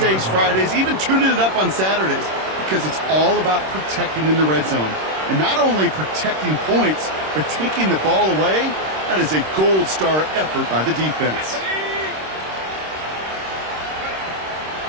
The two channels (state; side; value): late; left; 26 ms